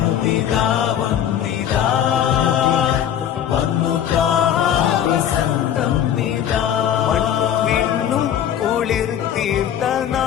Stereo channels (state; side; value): quieter; right; 9.9 dB